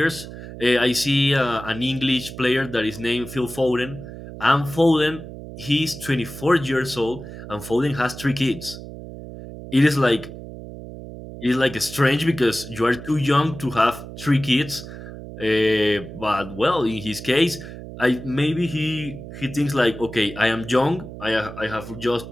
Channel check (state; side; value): noise; right; hum, 12 dB below the sound